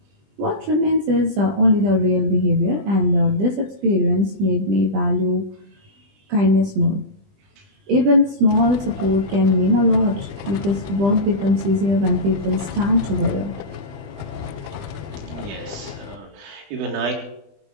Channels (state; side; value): late; left; 20 ms